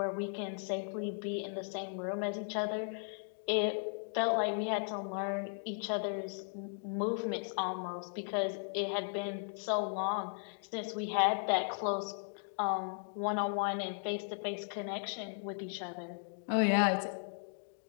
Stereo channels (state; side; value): silent; right; digital silence